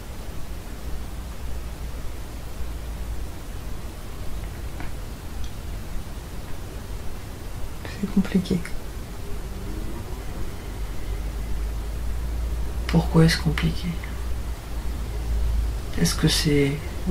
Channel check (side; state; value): both; identical; correlation 1.00